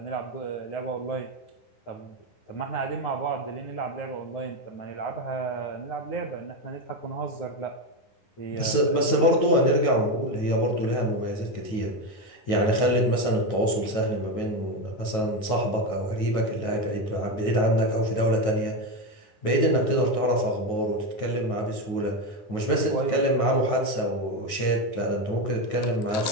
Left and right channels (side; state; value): right; late; 9.4 ms